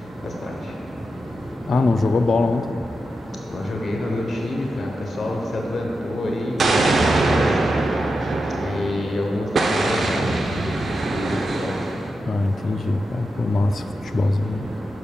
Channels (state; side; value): normal; both; correlation 0.89